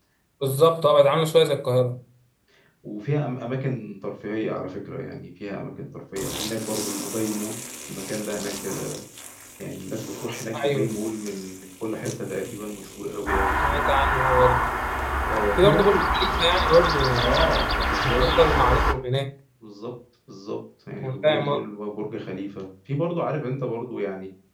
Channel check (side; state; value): both; identical; correlation 1.00